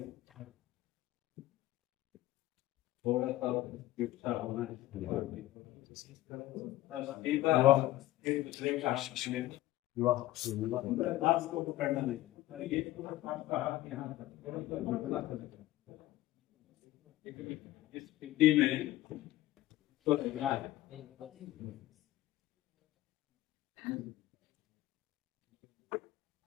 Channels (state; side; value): quieter; right; 16.0 dB